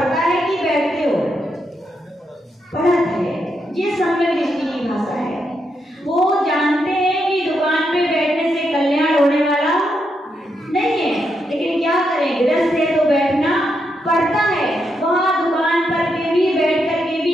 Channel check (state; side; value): normal; both; correlation 0.81